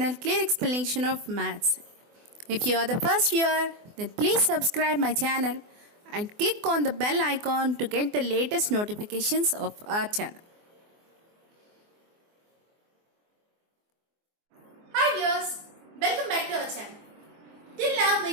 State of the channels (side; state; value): left; late; 24 ms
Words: Clear Explanation of Maths. If you are the first viewer, then please subscribe my channel and click on the bell icon to get the latest notifications of our channel. Hi viewers, welcome back to our channel. Till now